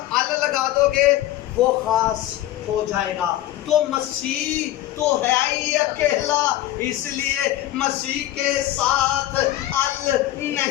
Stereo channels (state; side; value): quieter; right; 14.4 dB